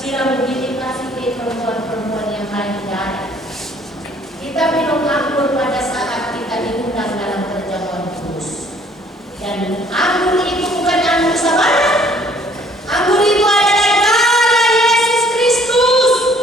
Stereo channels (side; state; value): both; normal; correlation 0.59